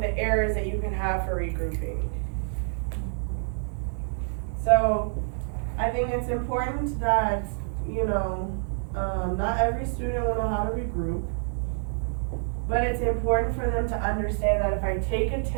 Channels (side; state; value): left; silent; digital silence